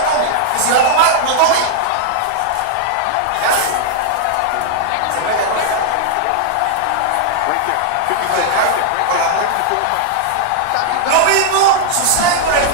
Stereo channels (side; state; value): both; different; correlation 0.00